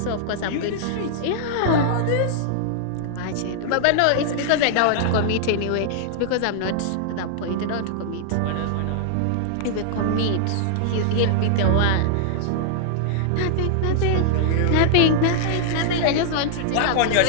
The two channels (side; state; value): both; different; correlation -0.01